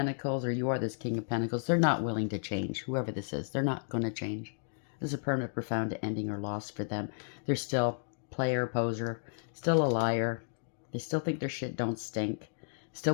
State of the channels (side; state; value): right; silent; digital silence